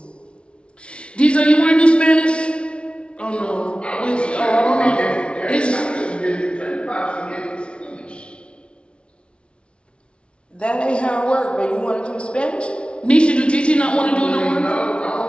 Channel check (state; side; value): late; right; 0.058 ms